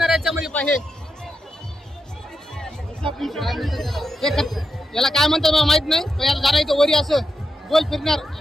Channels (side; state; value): both; normal; correlation 0.86